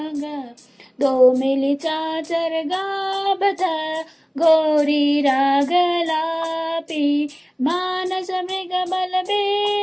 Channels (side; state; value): both; identical; correlation 1.00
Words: दो मिली चाचर गाबत गौरी रागलापी मानस मृग बल